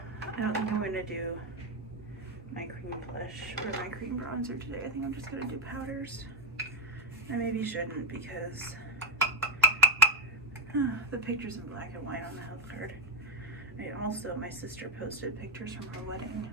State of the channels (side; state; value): both; normal; correlation 0.06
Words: I don't think I'm going to do my cream blush or my cream bronzer today. I think I'm just going to do powders. I maybe shouldn't because the picture's in black and white on the health card. My sister posted pictures from her wedding